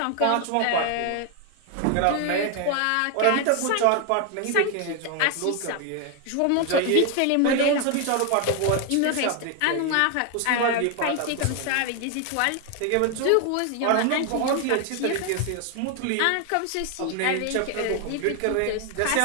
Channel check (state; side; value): different; both; correlation 0.01